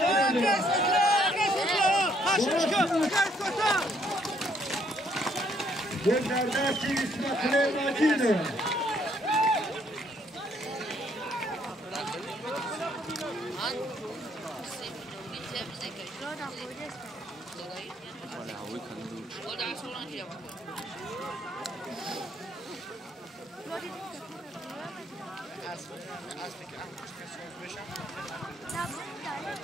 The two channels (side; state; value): both; normal; correlation 0.68